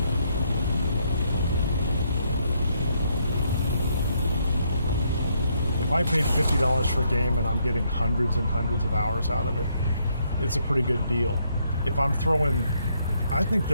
if I paid $50 for a game and I'm getting hundreds and hundreds of hours out of it, it's a pretty good deal. If I'm throwing, I think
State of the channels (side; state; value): both; inverted; correlation -0.73